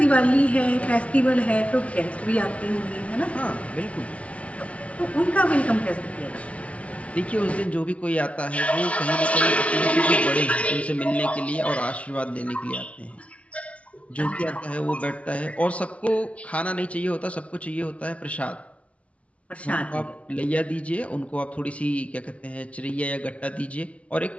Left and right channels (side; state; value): right; late; 0.064 ms